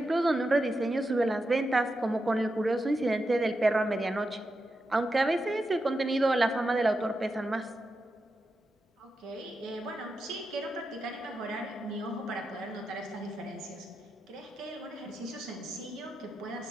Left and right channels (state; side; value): normal; both; correlation 0.88